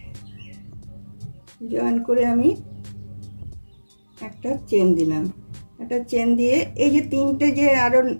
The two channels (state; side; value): inverted; both; correlation -1.00